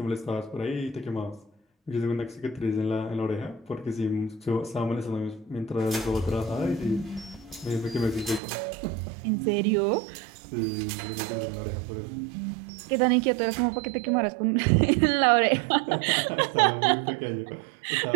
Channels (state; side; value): drops out; left; at 8.4 s